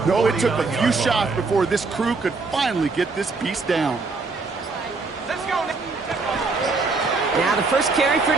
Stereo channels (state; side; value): quieter; left; 4.0 dB